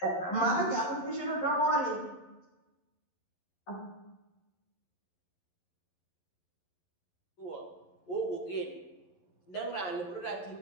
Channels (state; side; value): late; right; 11 ms